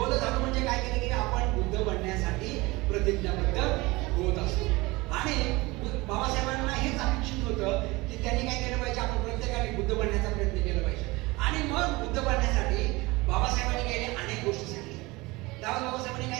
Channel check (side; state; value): left; quieter; 22.5 dB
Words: झालो म्हणजे काय केलं की आपण बुद्ध बनण्यासाठी प्रतिज्ञाबद्ध होत असतो. आणि बाबासाहेबांना हेच अपेक्षित होतं की त्यांनी काय केलं पाहिजे, आपण प्रत्येकाने बुद्ध बनण्याचा प्रयत्न केला पाहिजे. आणि मग बुद्ध बनण्यासाठी बाबासाहेबांनी केले अनेक गोष्टी सांगितल्या. त्यावेळेस बाबासाहेबांनी